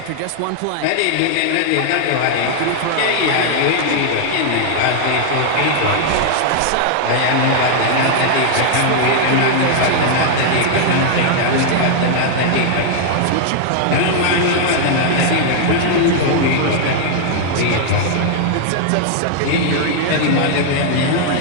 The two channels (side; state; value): both; different; correlation 0.00